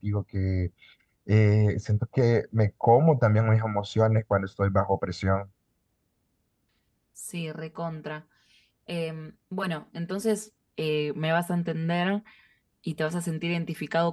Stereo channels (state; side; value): identical; both; correlation 1.00